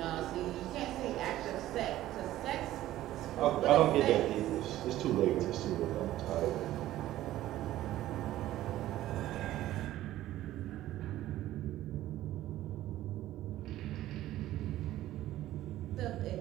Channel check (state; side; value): quieter; left; 14.4 dB